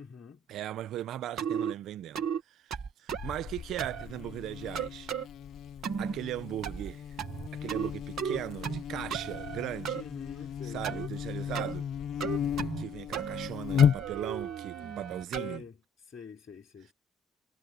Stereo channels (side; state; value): both; normal; correlation 0.56